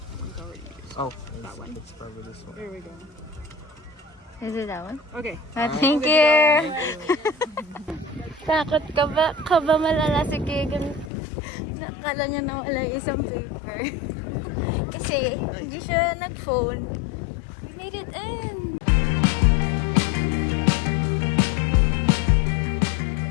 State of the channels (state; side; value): drops out; right; at 11.1 s